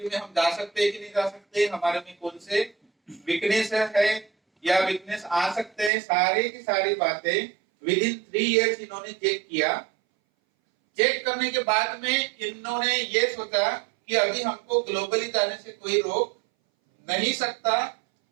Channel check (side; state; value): left; drops out; at 5.9 s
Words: में हम जा सकते हैं कि नहीं जा सकते, हमारे में कौन से वीकनेस है या वीकनेस आ सकते हैं। सारी की सारी बातें विद इन 3 इयर्स इन्होंने चेक किया। चेक करने के बाद में इन्होंने ये सोचा कि अभी हमको ग्लोबली जाने से कोई रोक नहीं सकता।